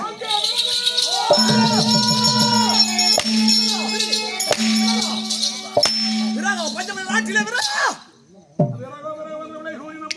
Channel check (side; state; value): both; identical; correlation 1.00